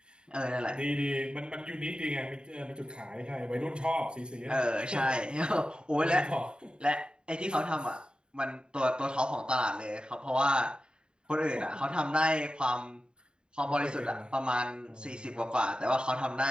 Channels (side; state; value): left; late; 0.050 ms